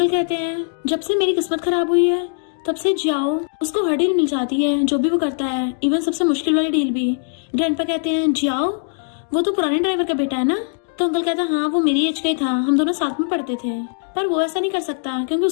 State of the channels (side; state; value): right; silent; digital silence